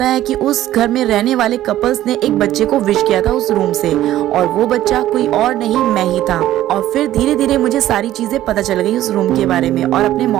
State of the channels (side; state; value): left; quieter; 13.6 dB